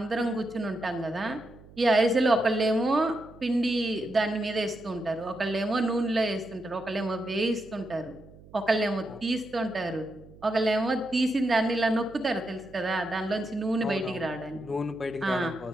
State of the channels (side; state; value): right; noise; hum, 22 dB below the sound